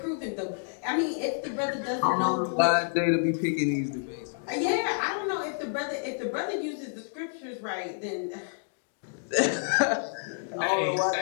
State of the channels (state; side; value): silent; right; digital silence